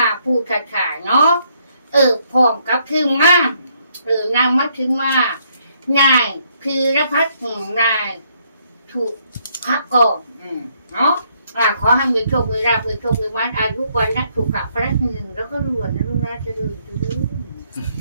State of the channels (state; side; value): inverted; both; correlation -0.71